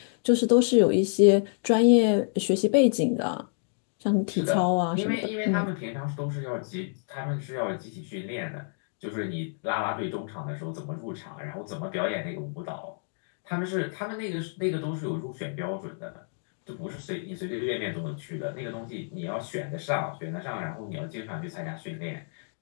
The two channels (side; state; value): right; silent; digital silence